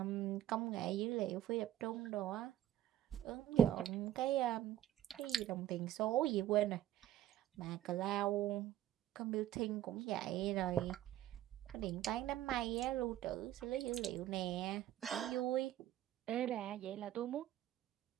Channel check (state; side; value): quieter; left; 12.3 dB